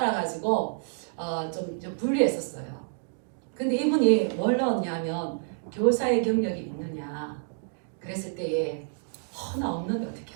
좀 불리했었어요. 근데 이분이 뭘 넣었냐면 교사의 경력이 있느냐 그랬을 때에 나 없는데 어떻게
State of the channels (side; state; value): left; silent; digital silence